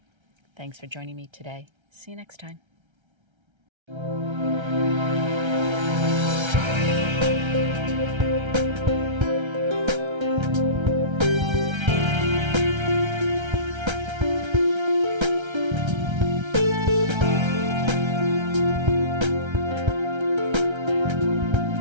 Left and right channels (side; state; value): left; late; 1.3 ms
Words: Thanks for joining me today. See you next time.